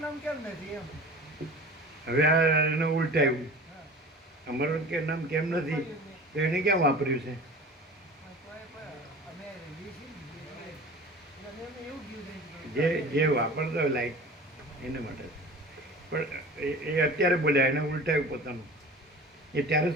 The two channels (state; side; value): normal; both; correlation 0.38